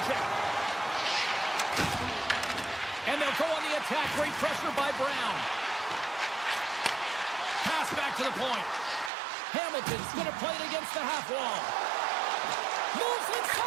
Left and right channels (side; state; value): left; drops out; at 9.1 s